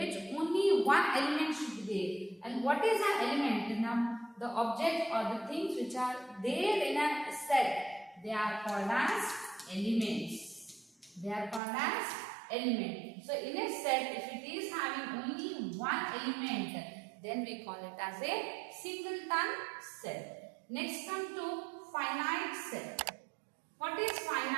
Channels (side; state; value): left; drops out; at 11.6 s